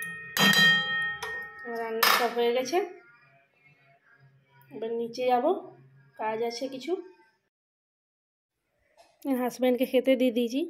রান্না সব হয়ে গেছে। এবার নিচে যাব, কাজ আছে কিছু। হাজব্যান্ডকে খেতে দিয়ে দিয়েছি,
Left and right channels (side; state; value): both; identical; correlation 1.00